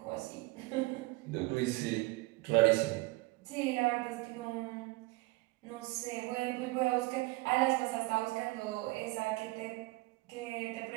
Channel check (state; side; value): quieter; left; 22.1 dB